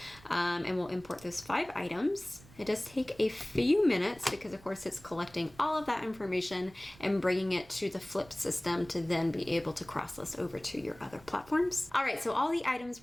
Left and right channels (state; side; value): noise; right; rumble, 23 dB below the sound